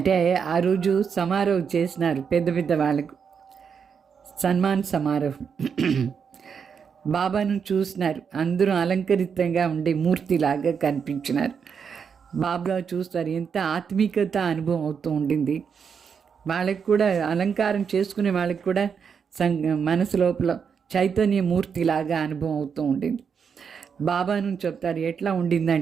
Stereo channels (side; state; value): left; quieter; 6.6 dB